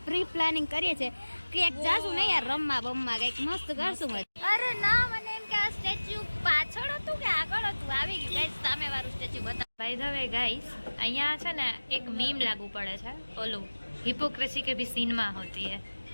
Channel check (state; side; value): inverted; both; correlation -1.00